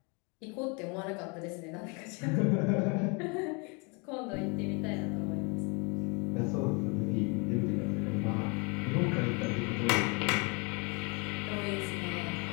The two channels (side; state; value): right; quieter; 31.8 dB